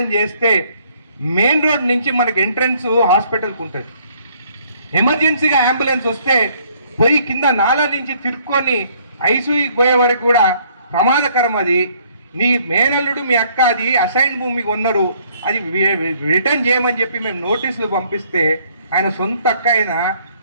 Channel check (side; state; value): both; inverted; correlation -0.64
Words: చేస్తే మెయిన్ రోడ్ నుంచి మనకి ఎంట్రన్స్ హాస్పిటల్కి ఉంటుంది. ఎమర్జెన్సీగా అంబులెన్స్ వస్తే పోయి కింద నాలా నుంచి తిరుక్కొని ఐసీయూకి పోయే వరకు కూడా ప్రమాదకరం. అది నీ మేనల్లుడు మీ అక్క అది అసైన్ భూమి కొన్నారు, అది రిటర్న్ చేయమని చెప్పి మేము నోటీసులు పంపిస్తే ఆయన సొంత అక్క